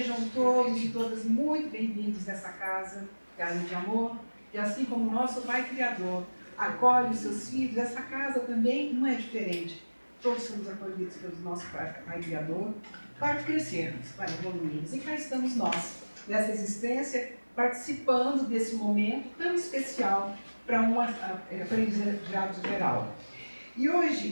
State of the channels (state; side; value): inverted; both; correlation -1.00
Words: todos e todas muito bem-vindos nessa casa, casa de amor. E assim como o nosso Pai Criador acolhe os seus filhos, essa casa também não é diferente. Todos somos acolhidos pelo nosso Pai Criador para crescermos, para evoluirmos. E cá estamos nós, nessa existência, participando desse momento tão especial para um aprendizado geral. E